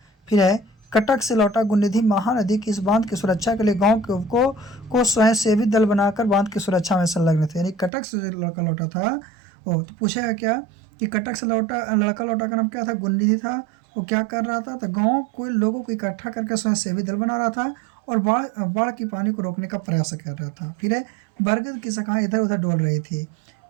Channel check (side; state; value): left; drops out; at 7.9 s